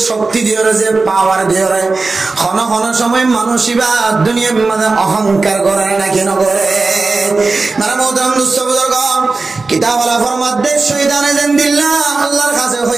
শক্তি দিয়ে যে পাওয়ার দিয়ে ক্ষণ ক্ষণ সময় মানুষ এবার দুনিয়ার মাঝে অহংকার করে নাকি না করে। কিতাবওয়ালা ফরমাতে শয়তানে যেন দিল্লা আল্লাহর কাছে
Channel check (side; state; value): left; quieter; 3.8 dB